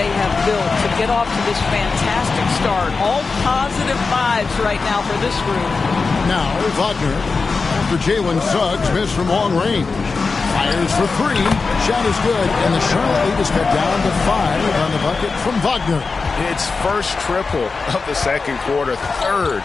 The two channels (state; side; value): quieter; right; 4.4 dB